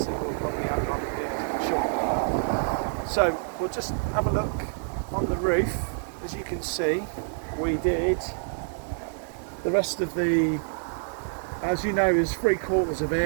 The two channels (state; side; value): silent; left; digital silence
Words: that we'll probably have on here shortly. So we'll just have a look on the roof. As you can see, we did the rest of the, as you know, there's 3/4 of